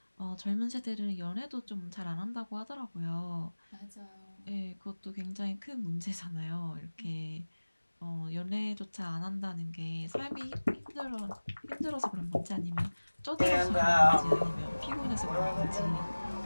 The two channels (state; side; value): inverted; both; correlation -1.00